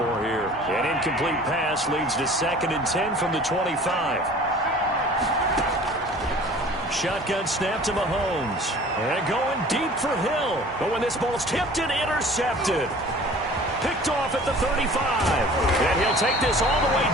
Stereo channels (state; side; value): normal; both; correlation 0.46